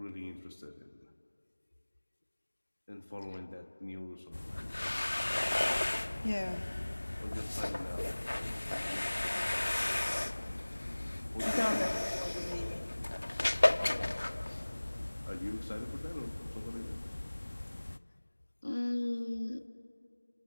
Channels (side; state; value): both; inverted; correlation -1.00